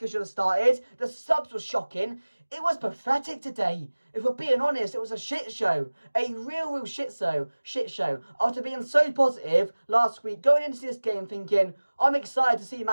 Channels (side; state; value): both; inverted; correlation -1.00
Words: should have started. The subs were shocking. It was pathetic today. If we're being honest, it was a shit show. A real shit show. After being so positive last week, going into this game thinking, I'm excited to see